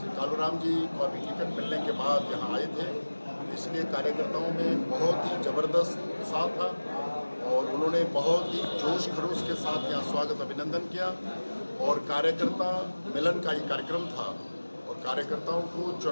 कालूराम जी को अभी टिकट मिलने के बाद यहाँ आए थे, इसलिए कार्यकर्ताओं में बहुत ही ज़बरदस्त उत्साह था और उन्होंने बहुत ही जोश खरोश के साथ यहाँ स्वागत अभिनंदन किया। और कार्यकर्ता मिलन का ये कार्यक्रम था और कार्यकर्ताओं को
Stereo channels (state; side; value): inverted; both; correlation -1.00